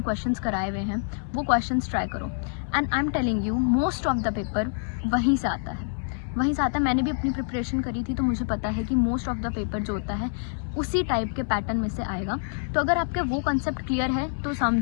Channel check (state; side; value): silent; right; 61 dB below the other